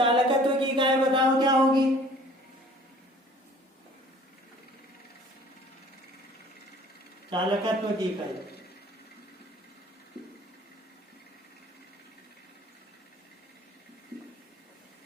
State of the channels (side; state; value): both; normal; correlation 0.51